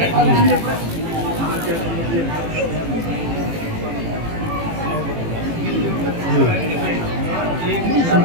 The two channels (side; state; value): left; late; 18 ms